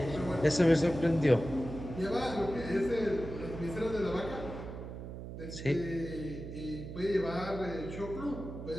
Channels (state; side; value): noise; right; hum, 9 dB below the sound